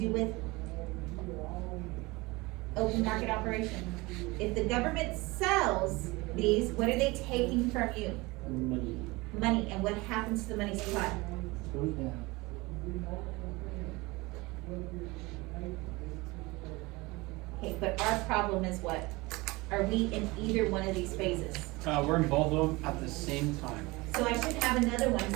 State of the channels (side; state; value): left; quieter; 23.0 dB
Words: with open market operation? If the government sells these, what are they taking from you? Money. Money, and what happens to the money supply? Goes down. Okay, but our problem is what? Are we in either one of these phases? We're in both of them at the same time. So I should have another one